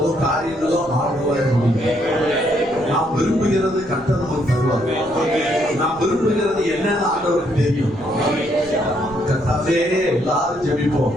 காரியங்களும் ஆர்வமாய் முடியும். நாம் விரும்புகிறது கர்த்தர் நமக்கு தருவார். நாம் விரும்புகிறது என்னன்னு ஆண்டவருக்கு தெரியும். கர்த்தாவே, எல்லாரும் ஜெபிப்போம்.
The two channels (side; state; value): left; noise; rumble, 23 dB below the sound